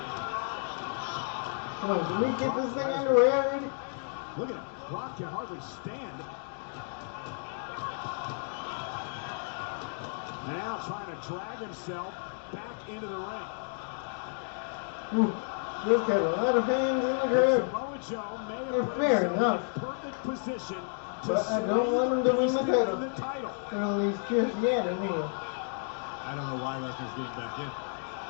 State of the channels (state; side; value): silent; right; 57 dB below the other